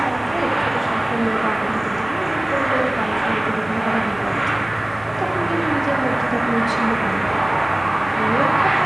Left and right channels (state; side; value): noise; right; rumble, 23 dB below the sound